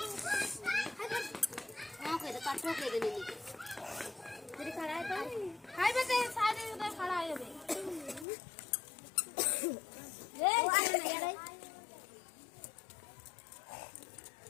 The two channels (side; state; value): right; drops out; at 8.2 s